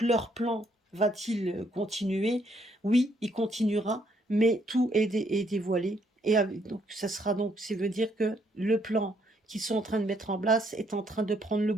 leur plan va-t-il continuer? Oui, il continuera, mais tout est dévoilé. Donc ça sera donc, ça veut dire que le plan qu'ils sont en train de mettre en place est en train de prendre le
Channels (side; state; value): both; normal; correlation 0.70